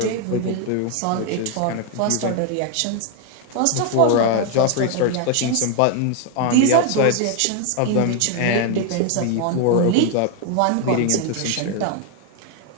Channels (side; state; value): both; different; correlation 0.01